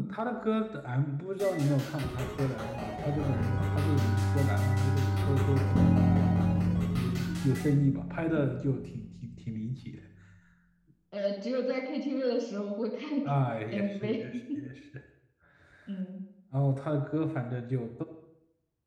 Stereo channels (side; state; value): both; identical; correlation 1.00